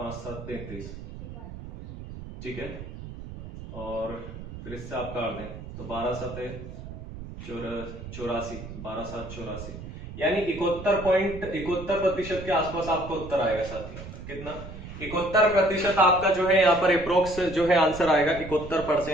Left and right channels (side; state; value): right; noise; rumble, 11 dB below the sound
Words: 7 33, ठीक है, और फिर इससे आप काट दें तो 12 7 84, 12 7 84, यानी 71% के आसपास आपका उत्तर आएगा साथियों, कितना 71% आपका जो है यहाँ पर अप्रोक्स जो है आंसर आएगा